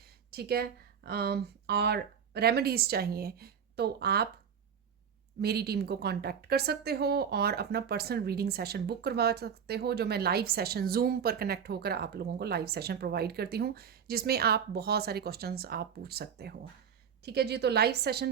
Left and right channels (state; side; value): quieter; left; 7.5 dB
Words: ठीक है, और रेमेडीज़ चाहिए, तो आप मेरी टीम को कांटेक्ट कर सकते हो और अपना पर्सनल रीडिंग सेशन बुक करवा सकते हो, जो मैं लाइव सेशन जूम पर कनेक्ट होकर आप लोगों को लाइव सेशन प्रोवाइड करती हूँ, जिसमें आप बहुत सारे क्वेश्चंस आप पूछ सकते हो। ठीक है जी। तो लाइव